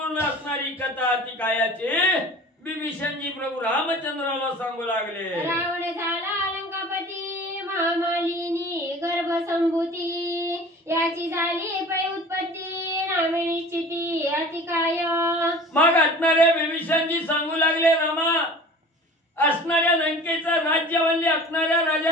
असणारी कथा अतिकायाची बिभीषणजी प्रभू रामचंद्राला सांगू लागले. रावण झाला लंकापती महामालिनी गर्भसंभूती याची झाली पै उत्पत्ती नामे निश्चिती अतिकाय. मग असणाऱ्या बिभीषणजी सांगू लागले, रामा असणाऱ्या लंकेचं राज्य म्हणजे असणाऱ्या राजा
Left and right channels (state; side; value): normal; both; correlation 0.42